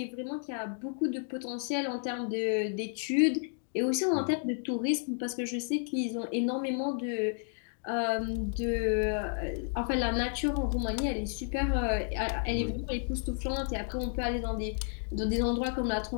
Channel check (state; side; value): silent; right; 57 dB below the other